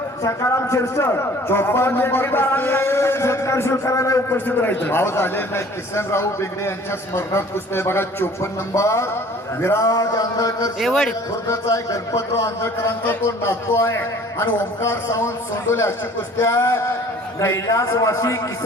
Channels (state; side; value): normal; both; correlation 0.51